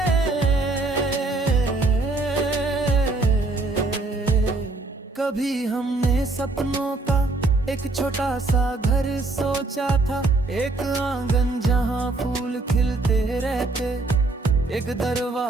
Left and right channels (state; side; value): quieter; left; 3.3 dB